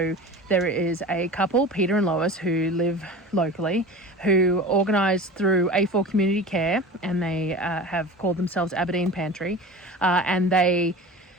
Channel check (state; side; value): normal; both; correlation 0.35